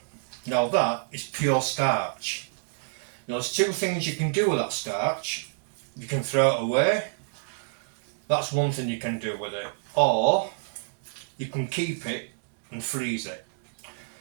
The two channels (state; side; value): silent; left; digital silence